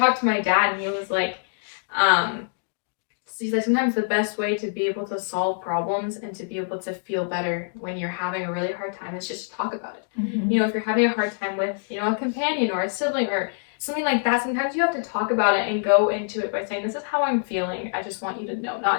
to my dad and he was like, he's like, sometimes the best way to be able to solve problems and to be able to feel better when you're having a really hard time is just to talk about it. If you're having a hard time with, a companion or a sibling or something like that, sometimes you have to talk about it and go into it by saying, this is how I'm feeling. I just want you to know.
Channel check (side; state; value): right; silent; digital silence